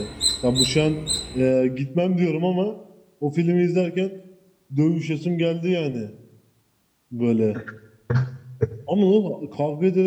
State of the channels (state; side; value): identical; both; correlation 1.00